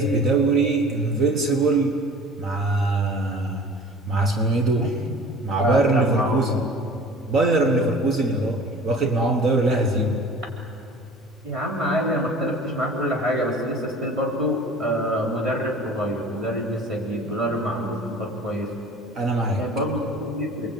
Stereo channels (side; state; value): both; normal; correlation 0.44